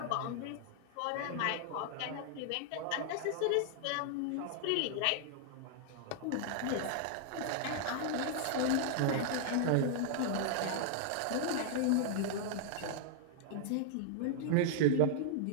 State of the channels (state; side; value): different; both; correlation -0.01